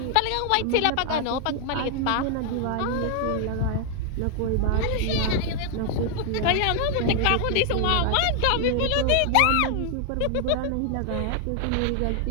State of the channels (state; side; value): different; both; correlation 0.00